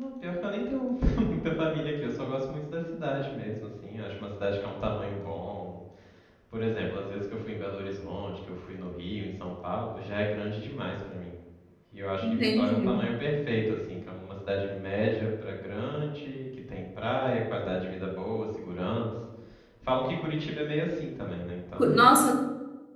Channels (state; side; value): identical; both; correlation 1.00